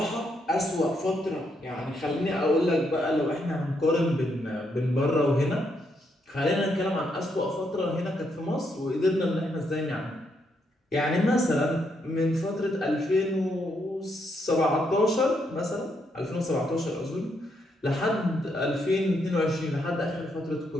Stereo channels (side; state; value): both; normal; correlation 0.77